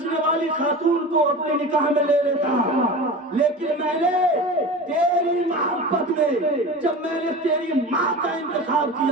والی خاتون کو اپنے نکاح میں لے لیتا، لیکن میں نے تیری محبت میں جب میں نے تیری ماں کا انتخاب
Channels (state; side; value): normal; both; correlation 0.32